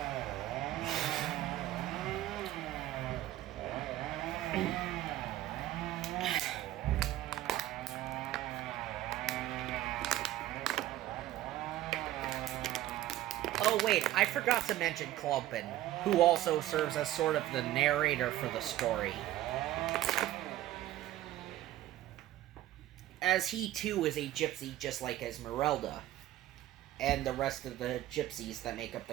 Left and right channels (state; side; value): quieter; left; 14.3 dB